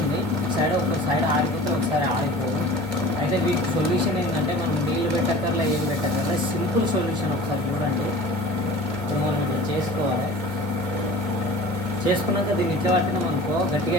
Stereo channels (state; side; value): normal; both; correlation 0.42